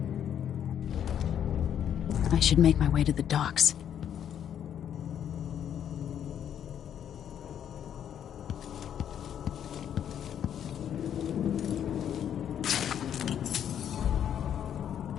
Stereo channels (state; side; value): quieter; right; 9.4 dB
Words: I should make my way to the docks.